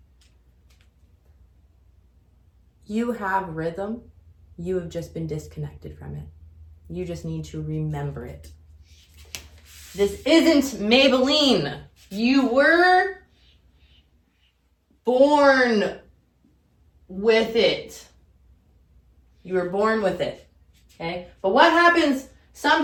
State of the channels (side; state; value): both; identical; correlation 1.00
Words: You have rhythm. You have just been disconnected from it. You just need to remember it. This isn't Maybelline. You were born with it. You were born with it. Okay? But what happens